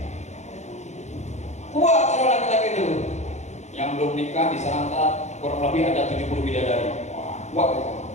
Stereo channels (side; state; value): right; late; 0.33 ms